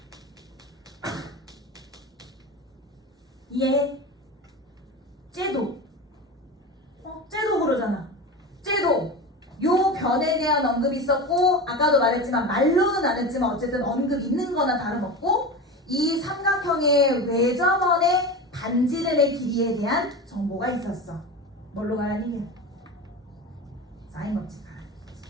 이해해? 쟤도 쟤도 그러잖아. 쟤도 요 변에 대한 언급이 있었고 아까도 말했지만 말로는 안 했지만 어쨌든 언급 있는 거나 다름없고 이 삼각형의 외접원의 반지름의 길이에 대한 정보가 있었어. 뭘로 가라는 얘기야? 사인 법칙 가라는 얘기지.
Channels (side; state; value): both; normal; correlation 0.26